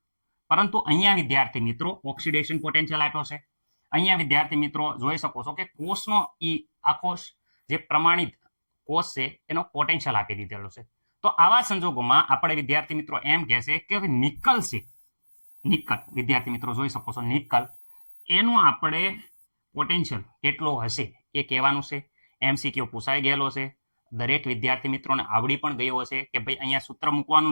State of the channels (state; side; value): inverted; both; correlation -1.00